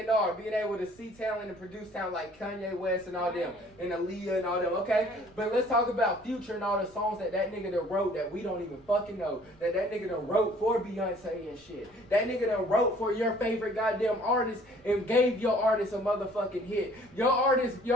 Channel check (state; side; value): noise; right; rumble, 28 dB below the sound